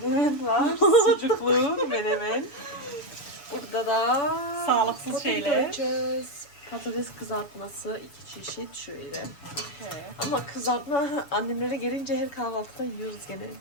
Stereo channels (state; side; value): late; right; 7.0 ms